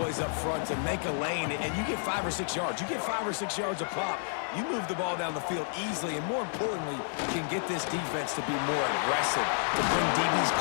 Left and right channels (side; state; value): right; silent; digital silence